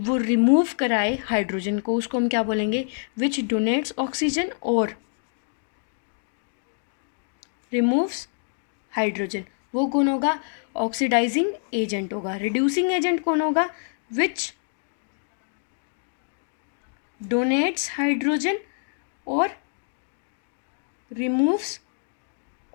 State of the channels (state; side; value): silent; right; digital silence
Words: रिमूव कराए हाइड्रोजन को, उसको हम क्या बोलेंगे? विच डोनेट्स ऑक्सीजन और रिमूव्स हाइड्रोजन, वो कौन होगा? ऑक्सीडाइजिंग एजेंट होगा। रिड्यूसिंग एजेंट कौन होगा? विच डोनेट्स हाइड्रोजन और रिमूव्स